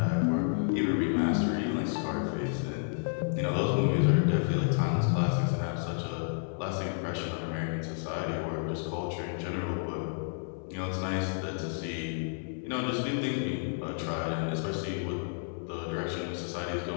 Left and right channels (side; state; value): right; silent; digital silence